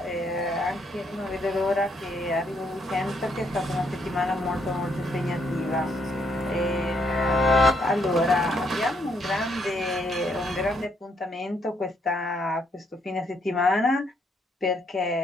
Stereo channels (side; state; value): both; normal; correlation 0.72